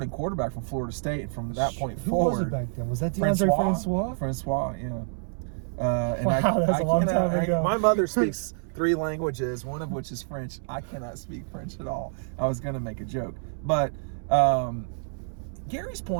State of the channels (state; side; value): silent; left; 60 dB below the other